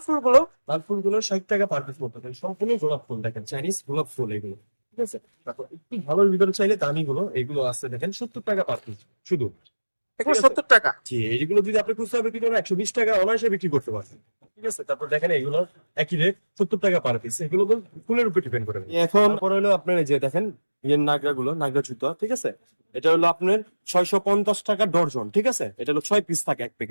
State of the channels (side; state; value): both; inverted; correlation -1.00